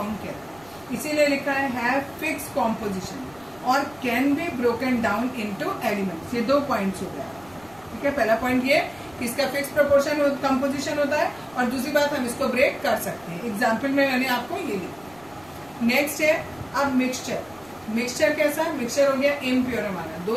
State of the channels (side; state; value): right; noise; rumble, 27 dB below the sound